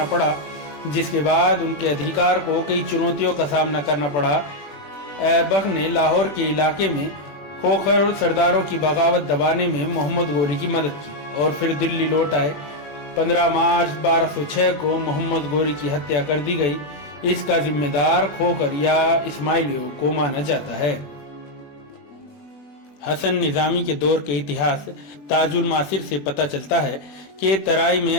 पड़ा, जिसके बाद उनके अधिकार को कई चुनौतियों का सामना करना पड़ा। ऐबक ने लाहौर के इलाके में खोखर सरदारों की बगावत दबाने में मोहम्मद गोरी की मदद की और फिर दिल्ली लौट आए। 15 मार्च 1206 को मोहम्मद गोरी की हत्या कर दी गई। इसका जिम्मेदार खोखर या इस्माइलियों को माना जाता है। हसन निजामी के दौर के इतिहास ताजुल मासिर से पता चलता है कि तराई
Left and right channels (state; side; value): late; right; 20 ms